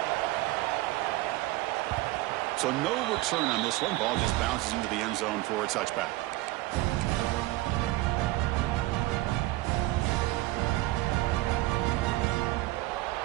So no return on this one. Ball just bounces into the end zone for a touchback.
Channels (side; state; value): left; quieter; 18.7 dB